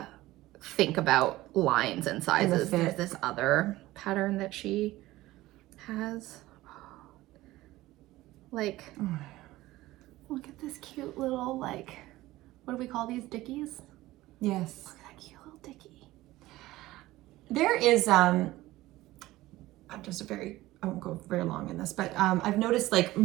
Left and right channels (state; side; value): quieter; left; 17.3 dB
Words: think about lines and sizes. There's this other pattern that she has. Like, look at this cute little, like, what do we call these, dickies? Yes. Look at that cute little dickie. There is, I won't go very long in this, but I've noticed like